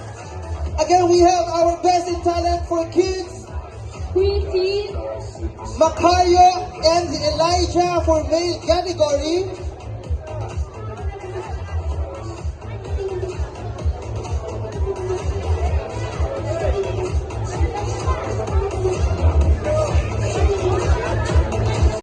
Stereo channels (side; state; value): both; identical; correlation 1.00